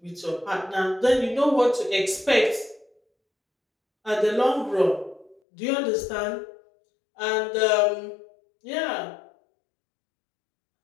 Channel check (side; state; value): right; drops out; at 5.4 s